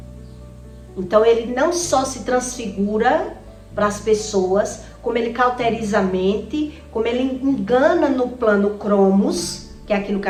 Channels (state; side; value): identical; both; correlation 1.00